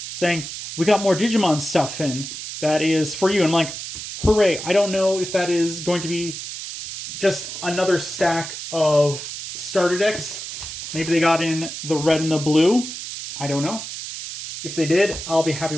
saying, we got more Digimon stuff in that is for you. I'm like, hooray. I don't know if that is going to be just another stack of starter decks. Maybe they got in the red and the blue. I don't know. If they did, I'll be happy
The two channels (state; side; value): noise; right; hiss, 8 dB below the sound